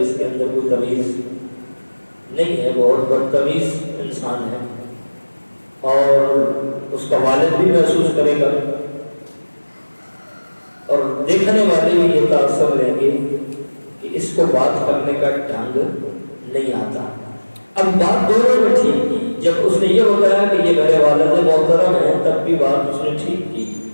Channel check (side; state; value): both; inverted; correlation -1.00